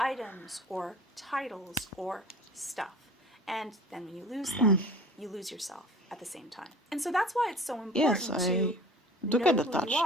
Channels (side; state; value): both; normal; correlation 0.42